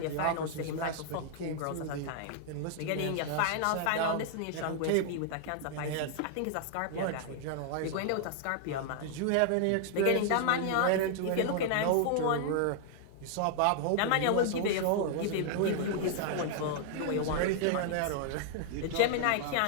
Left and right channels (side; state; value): both; different; correlation 0.00